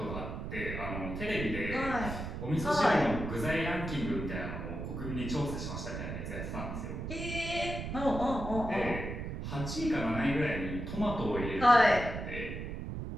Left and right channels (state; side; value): noise; right; rumble, 6 dB below the sound